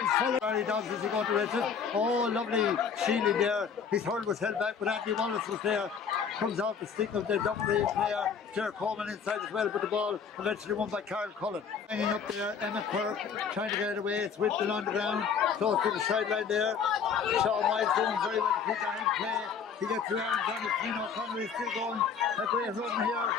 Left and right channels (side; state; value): right; quieter; 6.6 dB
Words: Barry Dobbs is he going to rest it. Oh, lovely shielding there. His hurl was held back, but Andy Wallace was there. Comes off the stick of the Duffery player, Ger Coleman inside as well, but the ball eventually won by Karl Cullen. Hanging up there, Emma Quirk trying to get it away. It's whipped along the ground, close to the sideline there. Sean White doing very well to keep that in play. He gets around. Johnny Flynn O'Connor is still going. A great run here.